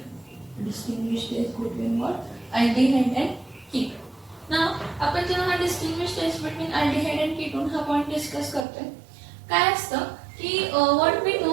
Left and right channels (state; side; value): drops out; left; at 8.7 s